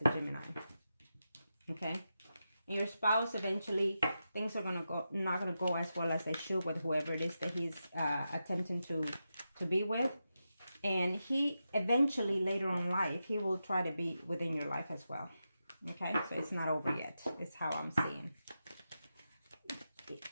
the Gemini. Okay, and your spouse, eventually things are not gonna go as well as they should with whoever it is that he's attempting to be with. And he eventually, later on in life, he will try to be within your life as well. Okay, so it's not over yet. It's how I'm seeing.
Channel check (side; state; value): both; inverted; correlation -0.89